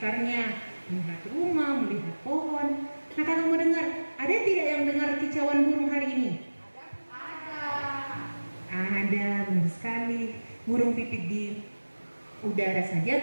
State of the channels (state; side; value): inverted; both; correlation -1.00